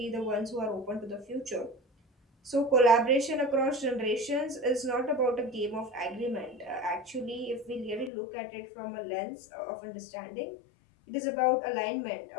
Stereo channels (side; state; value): right; drops out; at 8.1 s